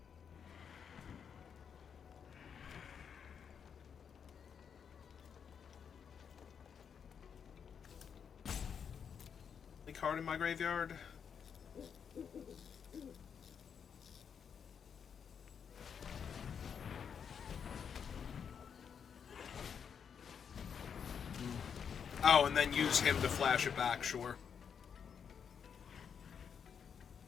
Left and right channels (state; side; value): quieter; right; 7.2 dB